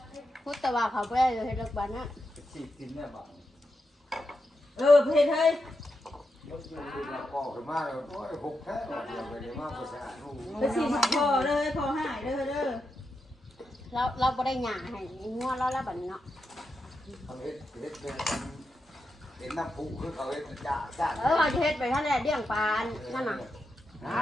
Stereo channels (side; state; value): both; normal; correlation 0.87